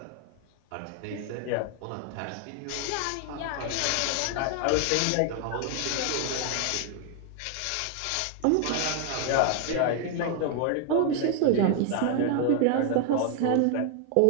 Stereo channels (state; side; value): different; both; correlation 0.00